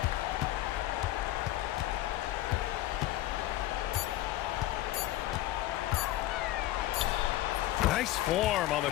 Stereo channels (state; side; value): quieter; right; 15.1 dB